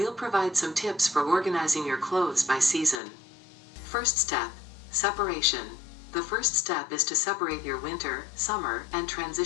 provide some tips for organizing your clothes by season. First step, separation. The first step is to separate your winter, summer, and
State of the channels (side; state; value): right; drops out; at 3.0 s